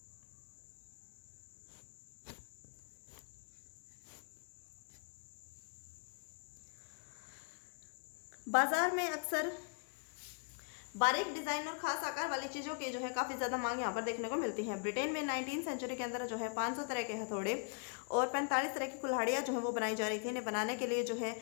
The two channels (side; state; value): right; quieter; 38.7 dB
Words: बाजार में अक्सर बारीक डिजाइन और खास आकार वाली चीजों की जो है काफी ज्यादा मांग यहाँ पर देखने को मिलती है। ब्रिटेन में 19वीं सेंचुरी के अंदर जो है 500 तरह के हथौड़े और 45 तरह की कुल्हाड़ियां जो है वो बनाई जा रही थी। इन्हें बनाने के लिए जो है